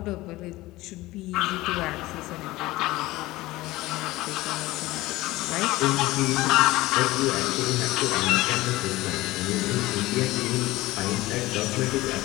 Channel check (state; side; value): quieter; right; 18.7 dB